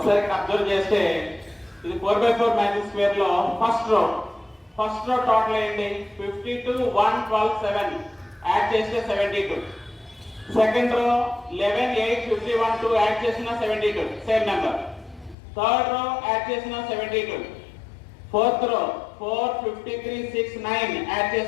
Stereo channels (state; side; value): drops out; right; at 15.4 s